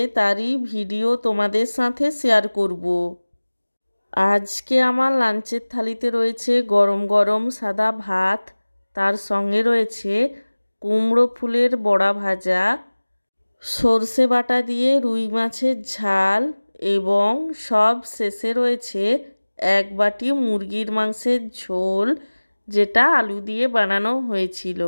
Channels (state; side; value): inverted; both; correlation -1.00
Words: তারই ভিডিও তোমাদের সাথে শেয়ার করব। আজকে আমার লাঞ্চের থালিতে রয়েছে গরম গরম সাদা ভাত, তার সঙ্গে রয়েছে কুমড়ো ফুলের বড়া ভাজা, সর্ষে বাটা দিয়ে রুই মাছের ঝাল এবং সব শেষে রয়েছে এক বাটি মুরগির মাংসের ঝোল, যেটা আলু দিয়ে বানানো হয়েছিল।